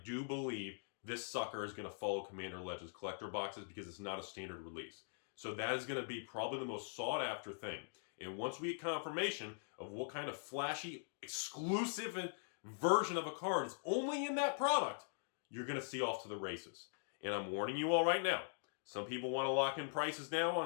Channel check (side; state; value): right; silent; digital silence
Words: believe this sucker is going to follow Commander Legends collector boxes because it's not a standard release. So that is going to be probably the most sought after thing. And once we get confirmation of what kind of flashy, exclusive version of a card is only in that product, you're going to see off to the races. And I'm warning you all right now. Some people want to lock in prices now